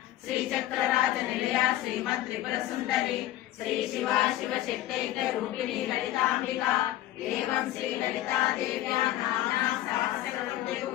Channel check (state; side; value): quieter; right; 14.5 dB